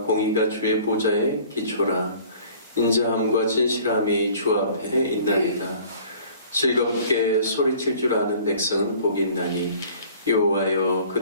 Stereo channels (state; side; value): inverted; both; correlation -0.50